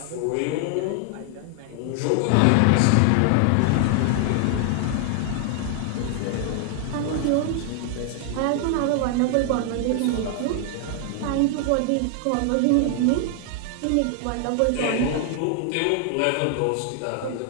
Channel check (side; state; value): both; different; correlation 0.00